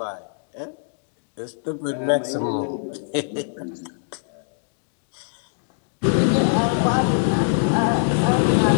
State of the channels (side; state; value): right; silent; digital silence